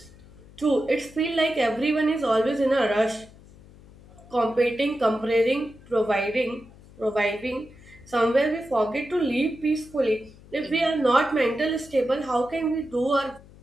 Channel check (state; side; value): noise; left; hum, 23 dB below the sound